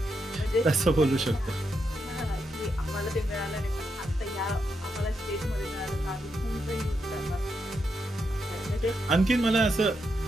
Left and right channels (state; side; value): normal; both; correlation 0.83